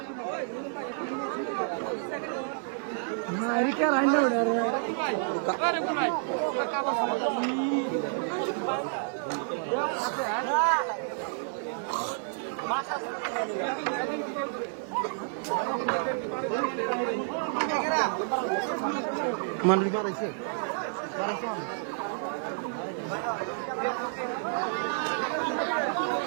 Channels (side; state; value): left; silent; digital silence